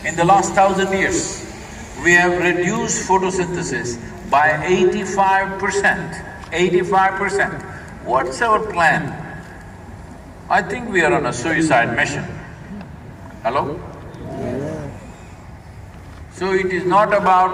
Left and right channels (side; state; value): both; identical; correlation 1.00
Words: In the last 1,000 years, we have reduced photosynthesis by 85%. 85%. What's our plan? I think we are on a suicide mission. Hello? So it is not